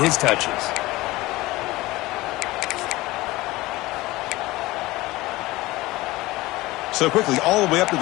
his touches. So quickly, all the way up to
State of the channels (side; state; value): right; quieter; 19.5 dB